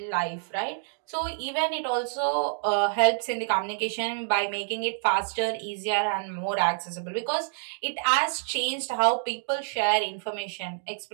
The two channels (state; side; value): silent; left; digital silence